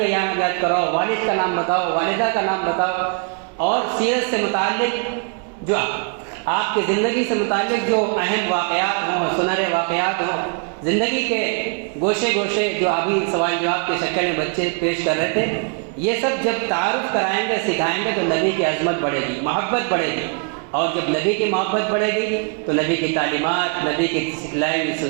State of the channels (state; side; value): quieter; left; 37.3 dB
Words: نام یاد کراؤ، والد کا نام بتاؤ، والدہ کا نام بتاؤ، اور سیرت سے متعلق جو آپ کی زندگی سے متعلق جو اہم واقعات ہوں، سنہرے واقعات ہوں، زندگی کے گوشے گوشے جو ابھی سوال جواب کی شکل میں بچے پیش کر رہے تھے، یہ سب جب تعارف کرائیں گے، سکھائیں گے تو نبی کی عظمت بڑھے گی، محبت بڑھے گی، اور جب نبی کی محبت بڑھے گی تو نبی کی تعلیمات، نبی کی سکھلائی ہوئی